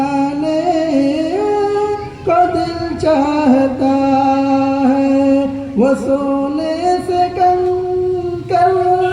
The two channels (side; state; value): both; identical; correlation 1.00